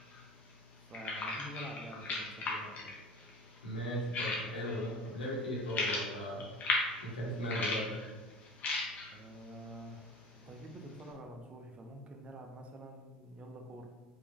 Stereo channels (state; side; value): normal; both; correlation 0.37